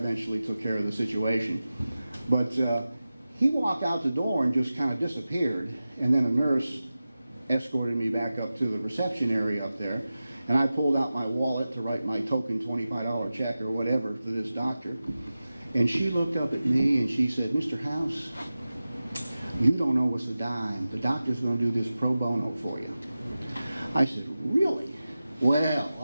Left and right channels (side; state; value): both; inverted; correlation -0.95